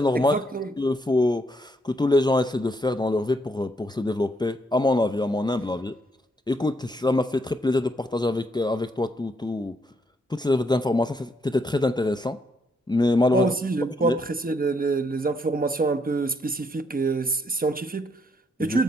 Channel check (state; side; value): normal; both; correlation 0.74